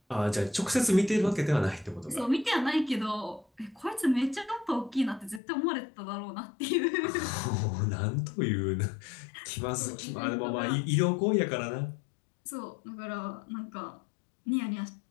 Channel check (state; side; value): drops out; right; at 5.4 s